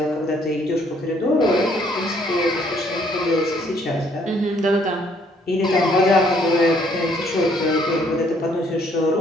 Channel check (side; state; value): both; normal; correlation 0.65